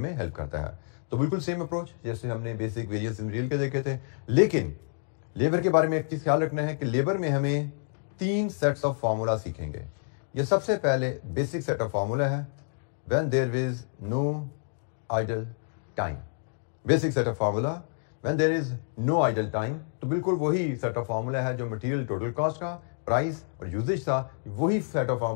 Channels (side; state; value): right; silent; digital silence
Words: हेल्प करता है। तो बिल्कुल सेम अप्रोच जैसे हमने बेसिक वेरिएंस इन रियल के देखे थे। लेकिन लेबर के बारे में एक चीज ख्याल रखना है कि लेबर में हमें 3 सेट्स ऑफ फार्मूला सीखेंगे। ये सबसे पहले बेसिक सेट ऑफ फार्मूला है when there is no idle time. Basic set of formula when there is no idle time, तो बिल्कुल वही सेट ऑफ फार्मूला है जो मटेरियल टोटल कॉस्ट का, प्राइस और यूजेज था। वही सेट ऑफ